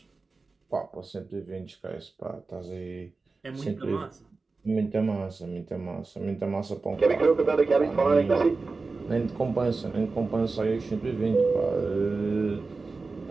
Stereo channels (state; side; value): quieter; left; 3.9 dB